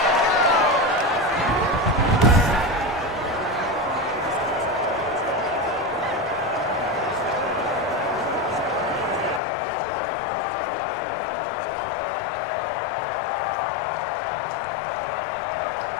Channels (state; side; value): drops out; right; at 9.4 s